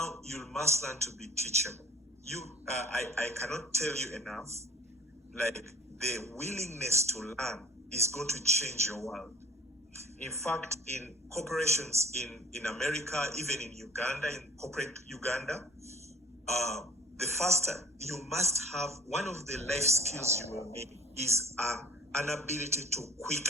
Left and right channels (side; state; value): both; normal; correlation 0.49